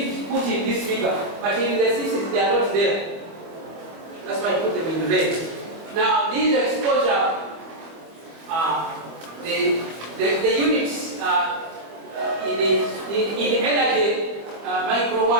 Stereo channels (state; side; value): late; left; 24 ms